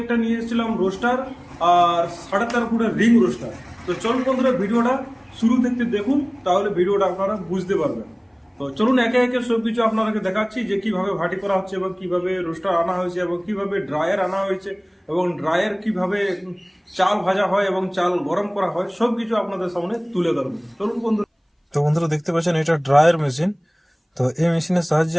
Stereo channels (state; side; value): identical; both; correlation 1.00